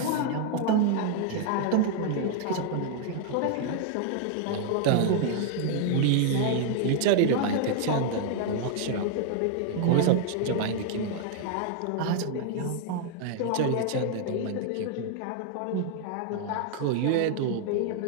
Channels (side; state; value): both; different; correlation 0.00